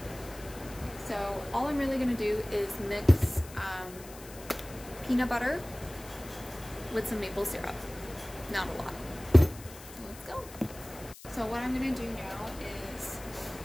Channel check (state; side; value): noise; left; hiss, 17 dB below the sound